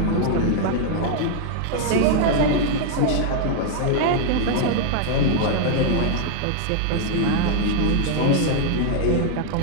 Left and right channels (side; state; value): both; different; correlation 0.00